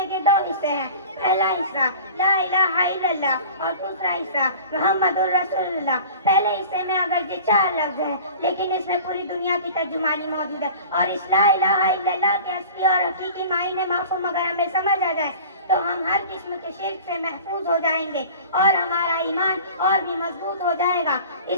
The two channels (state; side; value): inverted; both; correlation -0.41